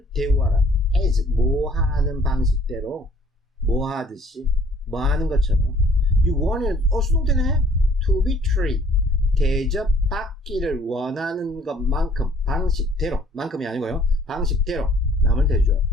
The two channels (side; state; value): both; normal; correlation 0.57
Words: 대우하라. as 뭐 하는 방식대로 뭐 하듯이 뭐 하는 것처럼 you want 수동태네. to be treated 대접받기를 원하는 것만큼 방식대로 만큼이 아니고요. 방식대로 남을